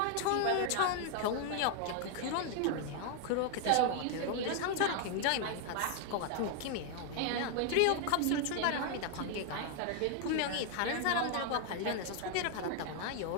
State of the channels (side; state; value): both; different; correlation 0.00